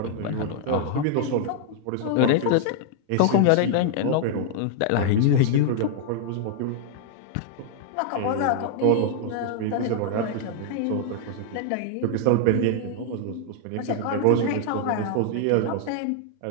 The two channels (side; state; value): both; different; correlation -0.01